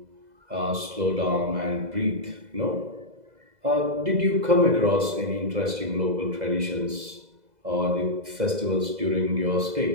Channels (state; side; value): late; left; 2.0 ms